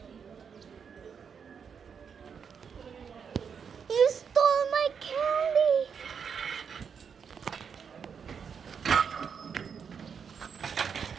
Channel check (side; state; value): left; quieter; 6.7 dB